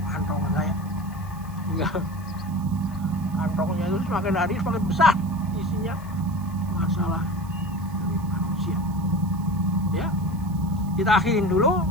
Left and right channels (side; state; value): right; noise; hiss, 24 dB below the sound